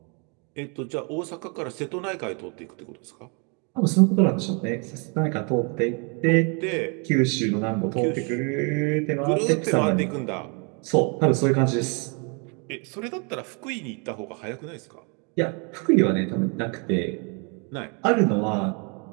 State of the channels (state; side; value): quieter; left; 34.9 dB